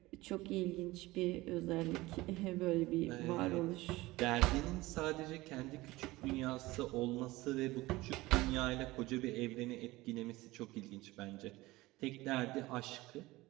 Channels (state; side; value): quieter; left; 19.5 dB